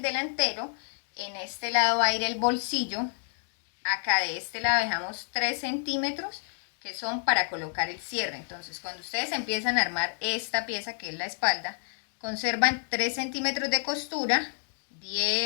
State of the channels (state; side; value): silent; right; 58 dB below the other